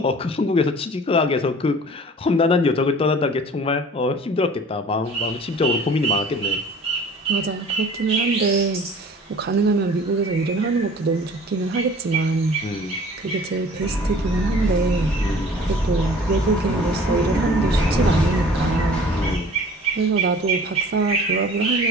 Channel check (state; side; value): normal; both; correlation 0.47